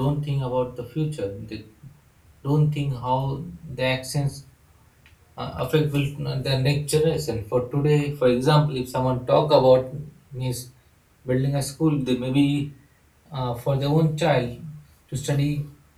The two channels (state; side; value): identical; both; correlation 1.00